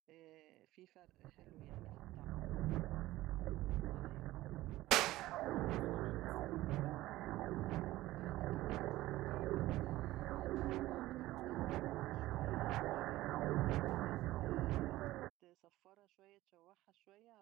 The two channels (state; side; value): quieter; left; 16.7 dB